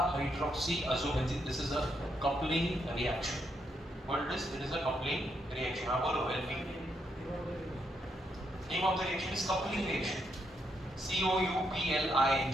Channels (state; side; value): normal; both; correlation 0.78